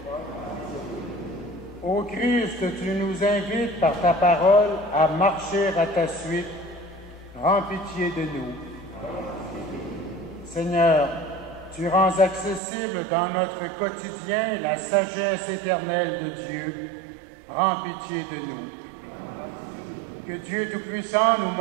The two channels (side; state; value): left; drops out; at 12.6 s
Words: Ô Christ, tu nous invites par ta parole à marcher à ta suite. Prends pitié de nous. Seigneur, tu rends accessible dans notre quotidien la sagesse éternelle de Dieu. Prends pitié de nous. Que Dieu Tout-Puissant nous